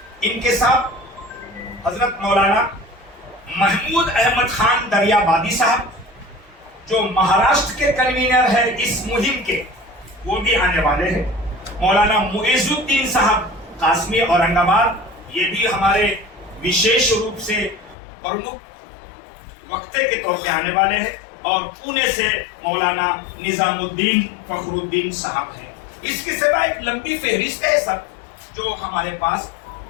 इनके साथ हजरत मौलाना महमूद अहमद खान दरियाबादी साहब, जो महाराष्ट्र के कन्वीनर है इस मुहिम के, वो भी आने वाले हैं। मौलाना मुइजुद्दीन साहब कासमी औरंगाबाद, ये भी हमारे विशेष रूप से प्रमुख वक्ते के तौर पे आने वाले हैं। और पुणे से मौलाना निजामुद्दीन फखरुद्दीन साहब हैं। इसके सिवा एक लंबी फहरिस्त है सब, जो हमारे पास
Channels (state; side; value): drops out; right; at 17.9 s